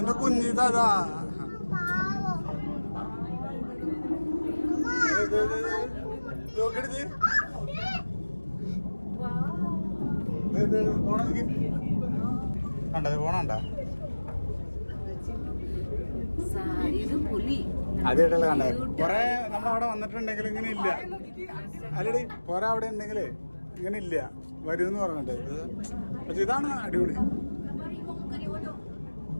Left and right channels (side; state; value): both; inverted; correlation -1.00